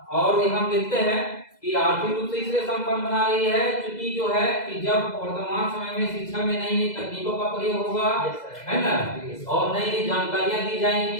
और हम देखते हैं कि आर्थिक रूप से इसलिए संपन्न बना रही है क्योंकि जो है कि जब वर्तमान समय में शिक्षा में नई नई तकनीकों का प्रयोग होगा, है ना, और नई नई जानकारियां दी जाएंगी,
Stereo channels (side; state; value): right; late; 2.0 ms